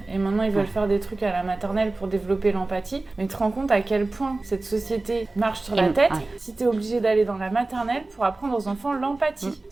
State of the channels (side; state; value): left; quieter; 3.2 dB